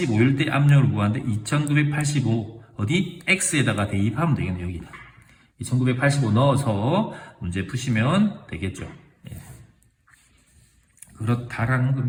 때 압력을 구하는데 2985 어디? x에다가 대입하면 되겠네. 여기다 2985 넣어서 문제 푸시면 되겠죠. 예. 그렇다라는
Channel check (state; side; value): identical; both; correlation 1.00